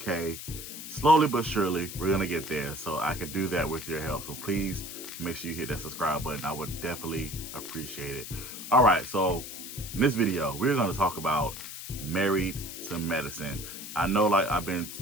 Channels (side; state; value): left; noise; hiss, 10 dB below the sound